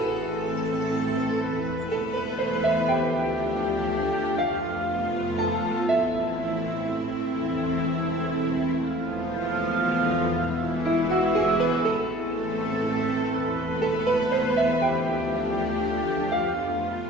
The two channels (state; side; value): normal; both; correlation 0.50